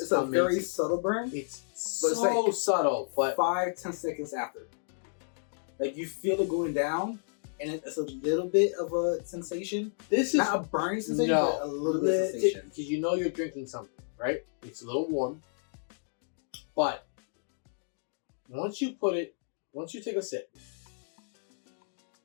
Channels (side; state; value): right; silent; digital silence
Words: very subtle burn. It's so subtle, but 5-10 seconds after. Like, you feel it going down, and it's a little bit of a sensation. This is not a burning sensation, but a little bit of sensation. Because you know you're drinking something, right? It's a little warm. But once you take a sip,